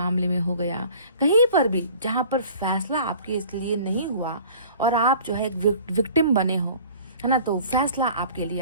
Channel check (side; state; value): both; inverted; correlation -0.47